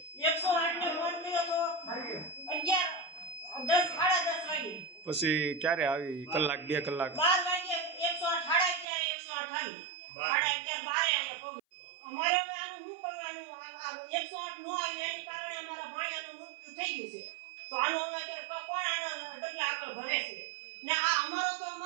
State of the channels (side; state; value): left; drops out; at 8.8 s